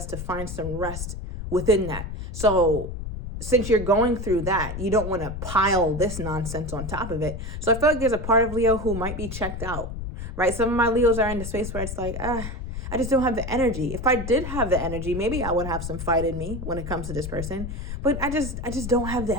to find some rest within that. So since you're going through that, you don't want to pile this nonsense on top of it. So I feel like there's a part of Leo who might be checked out, right? Some of my Leos are in the space where it's like, I just don't have the energy. If I did have the energy, maybe I would have some fight in me when it comes to this person. But I just don't have the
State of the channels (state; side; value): noise; left; rumble, 7 dB below the sound